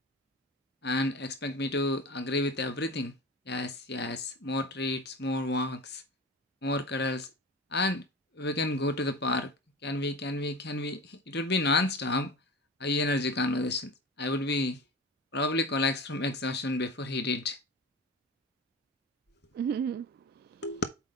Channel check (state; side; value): normal; both; correlation 0.32